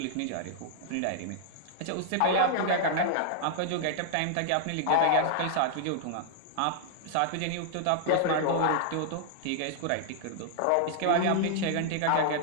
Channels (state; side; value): different; both; correlation -0.01